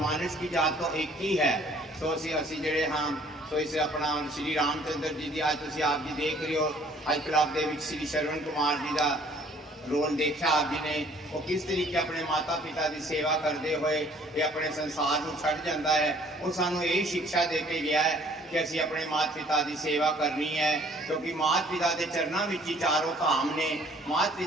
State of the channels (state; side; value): normal; both; correlation 0.57